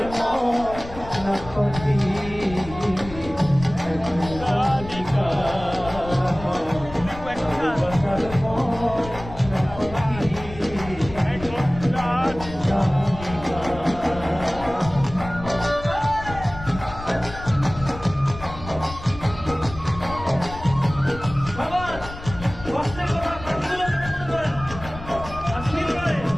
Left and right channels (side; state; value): left; noise; rumble, 13 dB below the sound